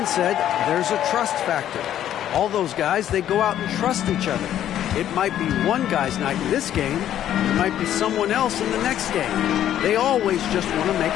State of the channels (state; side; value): quieter; right; 11.2 dB